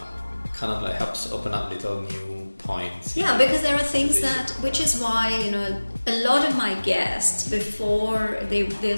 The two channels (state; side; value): inverted; both; correlation -1.00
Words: of like helps open up little new points. Yeah, because there are things which is why a lot of my guests, before